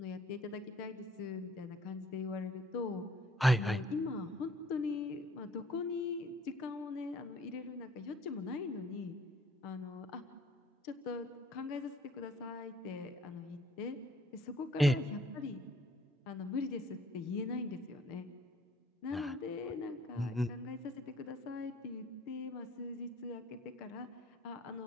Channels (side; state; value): both; normal; correlation 0.59